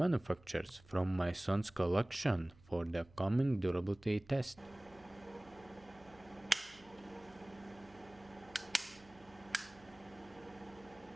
from my son's collection for the coming durability test.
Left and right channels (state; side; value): noise; right; hum, 25 dB below the sound